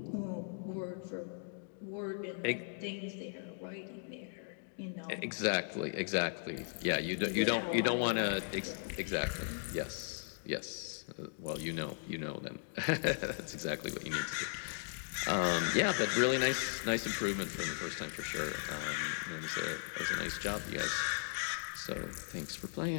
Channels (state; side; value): silent; right; digital silence